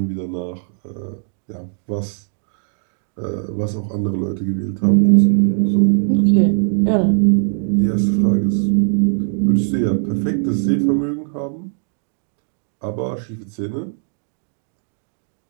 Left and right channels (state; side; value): silent; left; 64 dB below the other